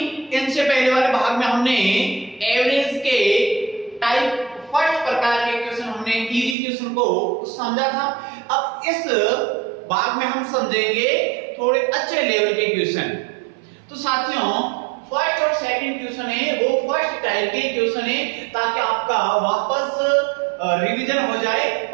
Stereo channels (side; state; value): left; drops out; at 6.6 s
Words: इनसे पहले वाले भाग में हमने एवरेज के टाइप फर्स्ट प्रकार के क्वेश्चन, हमने इजी क्वेश्चन को समझा था। अब इस भाग में हम समझेंगे थोड़े अच्छे लेवल के क्वेश्चन। तो साथियों, फर्स्ट और सेकंड क्वेश्चन है वो फर्स्ट टाइप के क्वेश्चन है, ताकि आपका वापस रिवीजन हो जाए